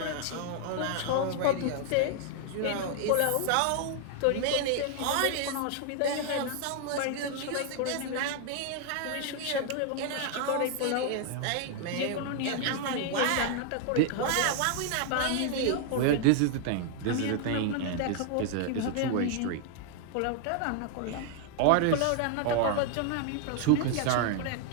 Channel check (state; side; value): different; both; correlation 0.00